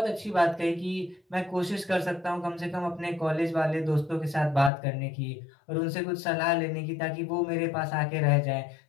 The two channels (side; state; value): right; drops out; at 4.7 s